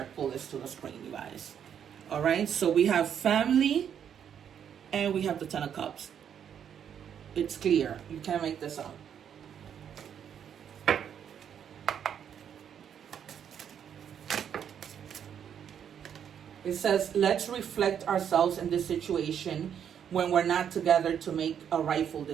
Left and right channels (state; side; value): quieter; left; 8.6 dB